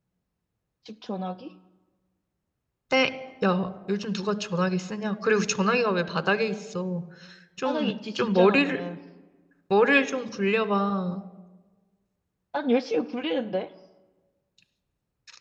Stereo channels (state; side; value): identical; both; correlation 1.00